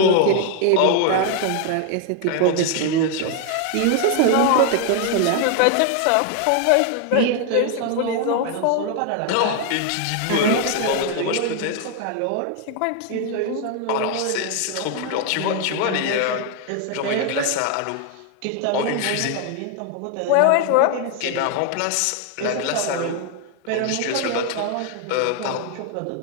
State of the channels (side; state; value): both; different; correlation 0.00